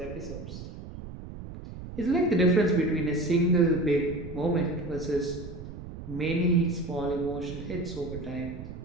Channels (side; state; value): right; noise; rumble, 11 dB below the sound